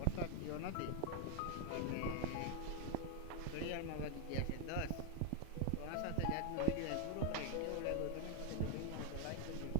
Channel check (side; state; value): both; different; correlation 0.01